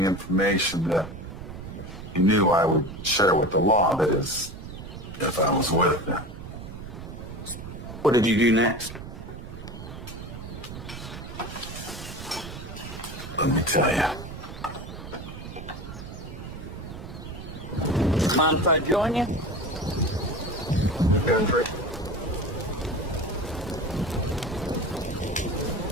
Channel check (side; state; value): right; noise; rumble, 11 dB below the sound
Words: information that he knew I would share with the law, that is, if I was with them. What did you do next? Let me tell you. Mind if I join you? Go for it.